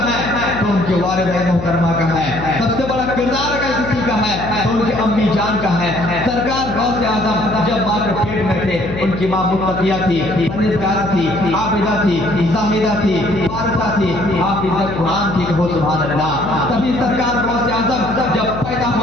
है तो उनके वालिद मोहतरमा का है। सबसे बड़ा किरदार अगर किसी का है तो उनके अम्मी जान का है। सरकार गौस आजम जब माँ के पेट में थे, उनकी माँ मुत्तकिया थी, परहेज़गारा थी, आबिदा थी, ज़ाहिदा थी, फारिसा थी, हाफिज़ा कुरान थी। कहो सुभान अल्लाह। तभी सरकार गौस आजम जब पैदा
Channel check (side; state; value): left; noise; hum, 9 dB below the sound